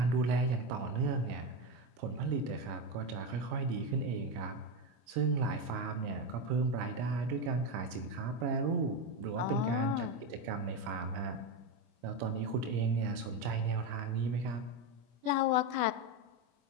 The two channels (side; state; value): left; late; 26 ms